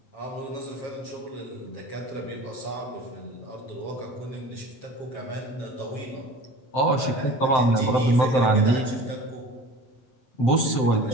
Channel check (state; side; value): late; right; 7.7 ms